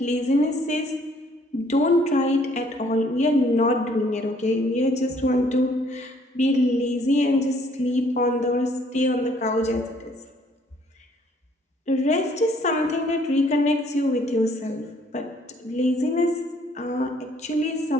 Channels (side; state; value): both; normal; correlation 0.62